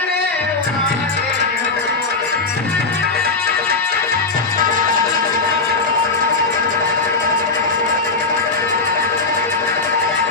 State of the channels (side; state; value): right; quieter; 3.9 dB